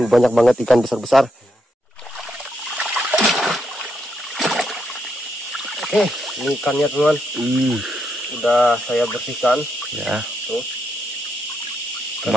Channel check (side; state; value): both; normal; correlation 0.80